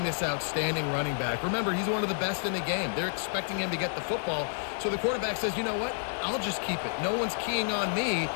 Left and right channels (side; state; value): right; silent; 58 dB below the other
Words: this outstanding running back. Remember, he's one of the best in the game. They're expecting him to get the football, so the quarterback says, you know what, I'll just keep it. No one's keying on me.